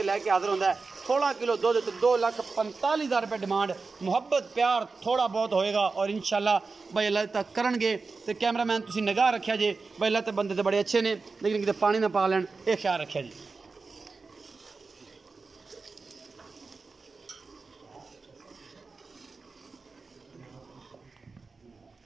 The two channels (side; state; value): left; quieter; 4.2 dB